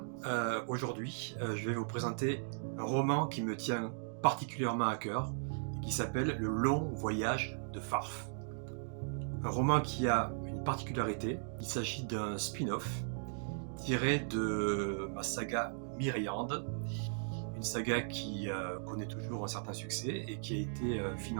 aujourd'hui, je vais vous présenter un roman qui me tient particulièrement à cœur, qui s'appelle Le Long Voyage de Farf. Un roman qui a une particularité, il s'agit d'un spin-off tiré de ma saga Myriande, une saga qui connaît toujours un certain succès et qui a été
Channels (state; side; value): silent; left; digital silence